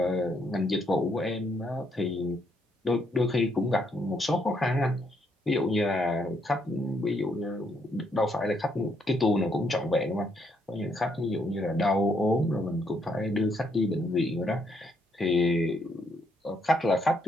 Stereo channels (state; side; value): normal; both; correlation 0.74